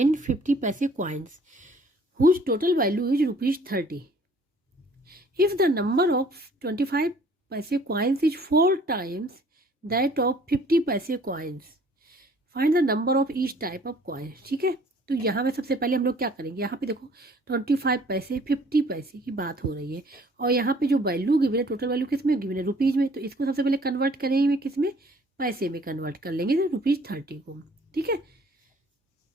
50 पैसे coins whose total value is ₹30। If the number of 25 पैसे coins is 4 times that of 50 पैसे coins, find the number of each type of coin, ठीक है। तो यहाँ में सबसे पहले हम लोग क्या करेंगे, यहाँ पे देखो 25 पैसे 50 पैसे की बात हो रही है, और यहाँ पे जो वैल्यू गिवन है, टोटल वैल्यू किस में गिवन है, रुपीज में, तो इसको सबसे पहले कन्वर्ट करेंगे किस में, पैसे में कन्वर्ट कर लेंगे, ₹30 को, ठीक है।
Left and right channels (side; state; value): both; normal; correlation 0.56